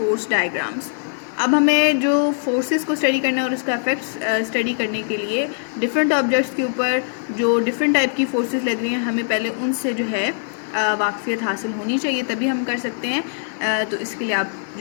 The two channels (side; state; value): right; silent; 57 dB below the other